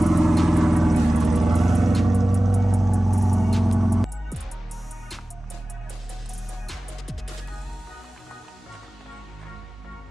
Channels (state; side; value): normal; both; correlation 0.97